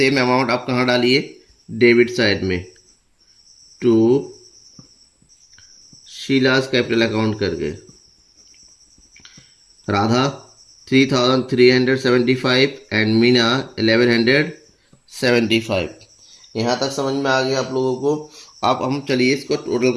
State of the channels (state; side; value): identical; both; correlation 1.00